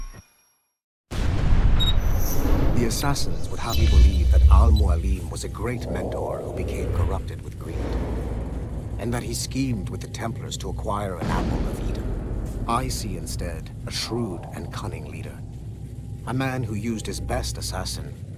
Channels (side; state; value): both; identical; correlation 1.00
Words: The assassins would have you believe that Al-Mualim was a great mentor who became corrupted with greed, and that he schemed with the Templars to acquire an apple of Eden. I see instead a shrewd and cunning leader. A man who used his best assassin,